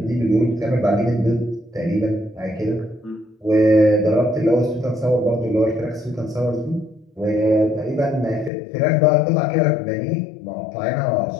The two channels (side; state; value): right; drops out; at 8.5 s